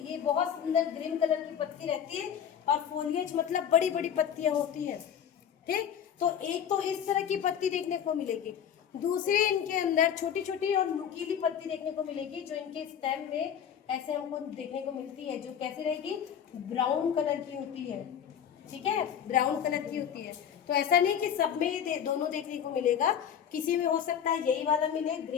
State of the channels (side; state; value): right; quieter; 8.7 dB